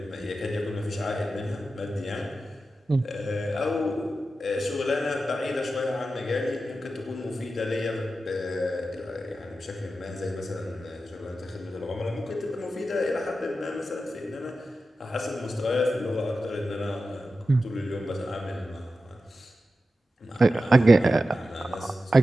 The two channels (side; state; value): both; normal; correlation 0.92